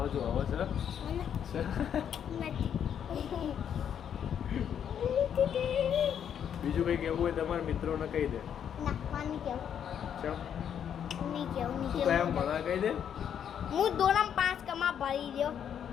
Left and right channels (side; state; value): right; quieter; 8.7 dB